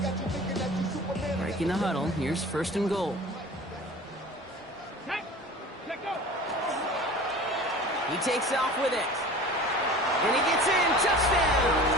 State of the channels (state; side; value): normal; both; correlation 0.40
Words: Breaking the huddle, here's 1st and goal. He takes off with it. And he gets in, touchdown!